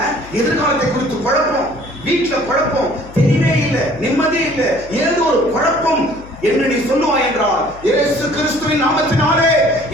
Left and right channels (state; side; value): noise; left; hum, 19 dB below the sound